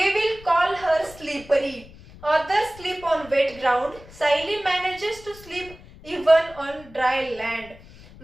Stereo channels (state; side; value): noise; left; rumble, 20 dB below the sound